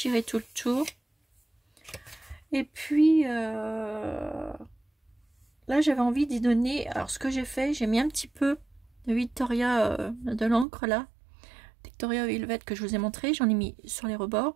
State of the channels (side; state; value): left; drops out; at 10.7 s